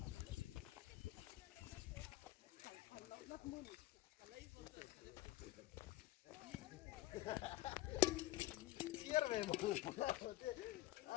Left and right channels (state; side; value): quieter; right; 16.6 dB